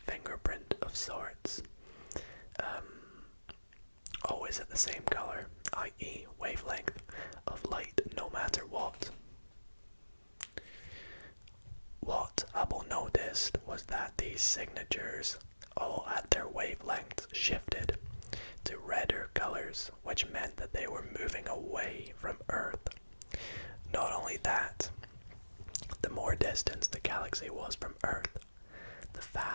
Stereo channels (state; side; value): inverted; both; correlation -1.00